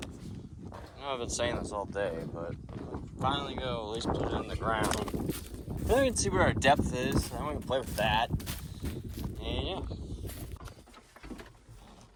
I know I've been saying this all day, but finally go at least put it in the ground. Then we can see where our depth is. Then we can play with that. And yeah.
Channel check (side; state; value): both; identical; correlation 1.00